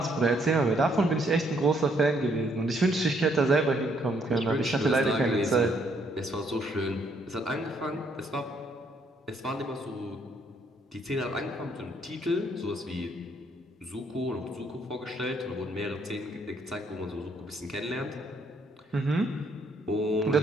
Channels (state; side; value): normal; both; correlation 0.69